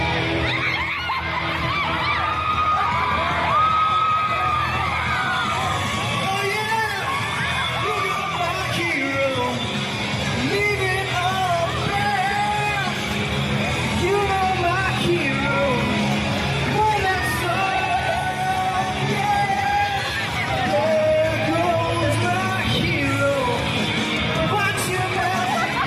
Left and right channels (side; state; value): both; identical; correlation 1.00